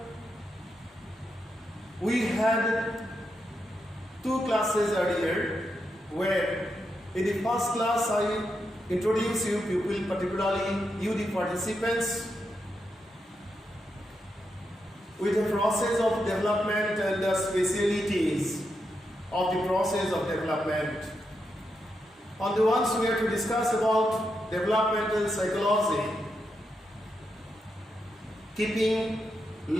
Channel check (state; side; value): normal; both; correlation 0.84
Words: we had two classes earlier, where in the first class I introduce you people, particularly you the participants, with the process of development and the specialities of the process of development. On the ones we are to discuss about developmental psychology, keeping